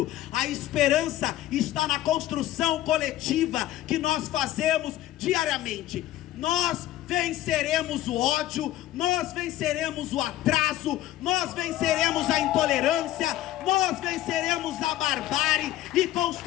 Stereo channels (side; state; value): right; quieter; 14.2 dB